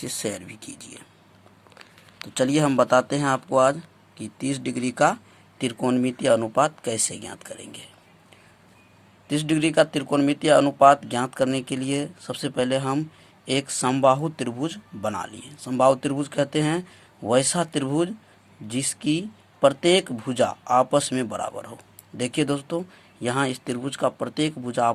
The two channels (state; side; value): identical; both; correlation 1.00